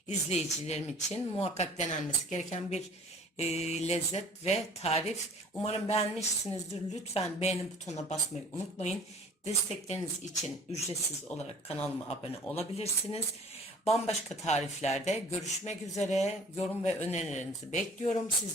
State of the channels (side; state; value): both; normal; correlation 0.49